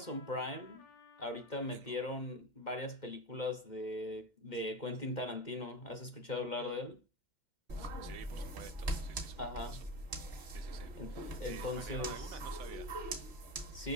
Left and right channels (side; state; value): right; late; 2.1 ms